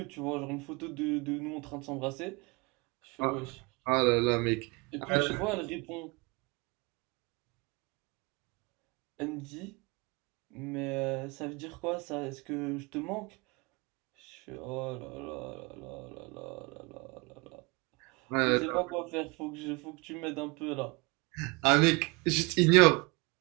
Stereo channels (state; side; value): quieter; left; 27.1 dB